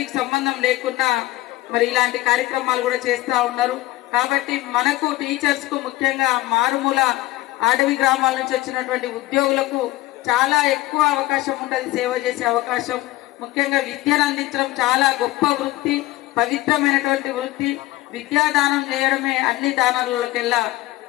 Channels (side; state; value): right; quieter; 17.7 dB